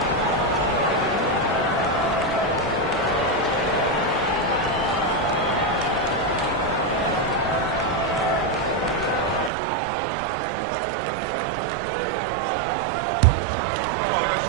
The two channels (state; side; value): drops out; left; at 9.5 s